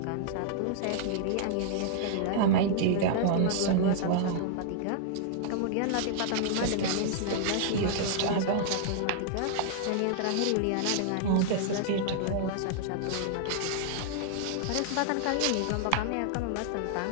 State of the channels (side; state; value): both; different; correlation -0.01